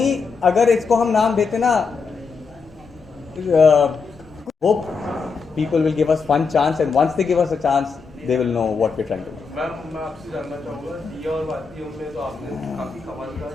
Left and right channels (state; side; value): quieter; right; 5.1 dB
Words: अगर इसको हम नाम देते ना hope people will give us one chance, and once they give us a chance they will know what we're trying to do. मैं आपसे जानना चाहूँगा, दिया और बातियों में तो आपने काफ़ी कमाल का